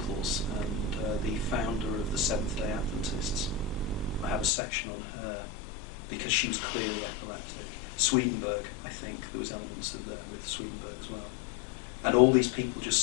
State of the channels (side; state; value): right; drops out; at 4.5 s